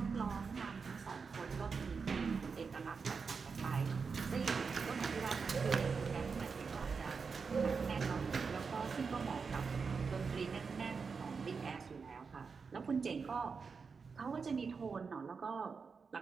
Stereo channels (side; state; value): left; quieter; 5.2 dB